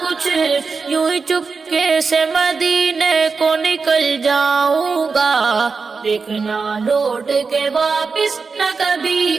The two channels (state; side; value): quieter; left; 4.8 dB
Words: کچھ، یوں ہی چپکے سے مدینے کو نکل جاؤں گا، دیکھنا لوٹ کے واپس نہ